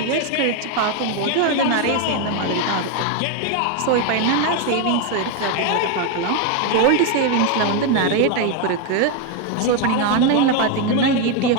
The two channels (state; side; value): different; both; correlation 0.01